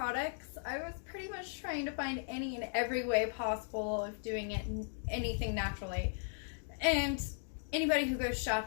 I was pretty much trying to find any and every way possible of doing it, anything naturally. And anybody who goes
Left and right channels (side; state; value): right; silent; digital silence